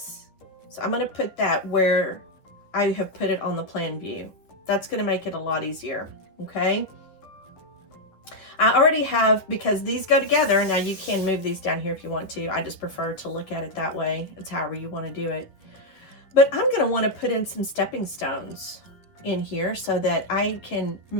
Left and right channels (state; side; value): late; right; 10 ms